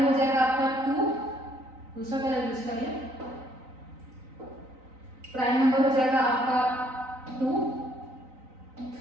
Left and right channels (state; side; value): late; left; 3.9 ms